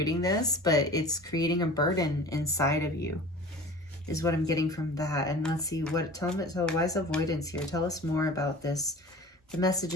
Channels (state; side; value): normal; both; correlation 0.40